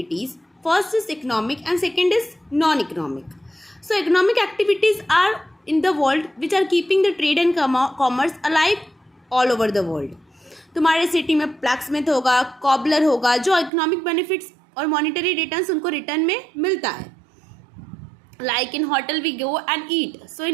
First is economic and second is non-economic. So, economic activities are in the world which are keeping the trade and commerce alive all over the world. तुम्हारे city में blacksmith होगा, cobbler होगा, जो economic benefits और monetary returns उनको return में मिलता है. Like in hotel we go and eat, so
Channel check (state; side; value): drops out; left; at 13.7 s